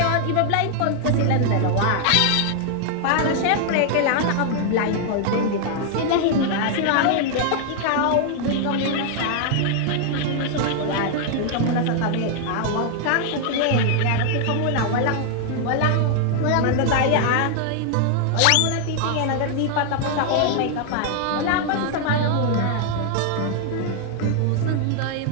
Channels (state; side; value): different; both; correlation 0.00